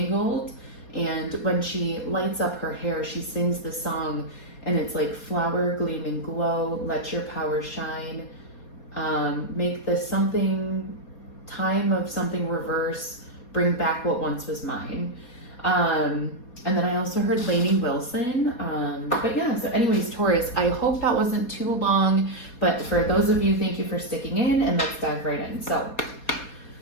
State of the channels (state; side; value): late; right; 4.2 ms